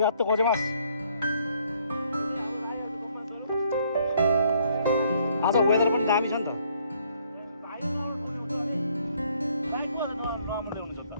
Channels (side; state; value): both; inverted; correlation -0.66